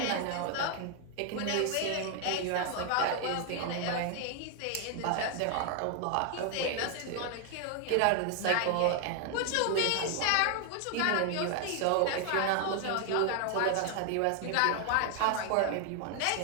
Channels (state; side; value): different; both; correlation 0.00